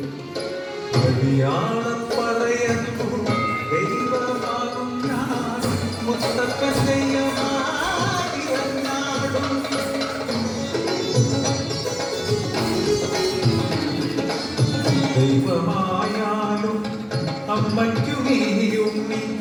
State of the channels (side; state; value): both; identical; correlation 1.00